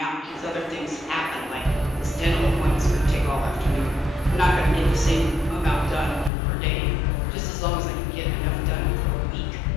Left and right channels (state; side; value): drops out; right; at 6.3 s